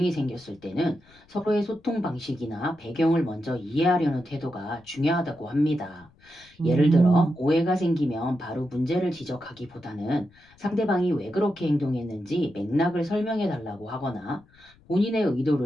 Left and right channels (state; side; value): noise; left; rumble, 29 dB below the sound